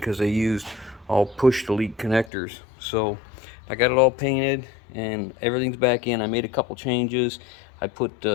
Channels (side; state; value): right; drops out; at 2.3 s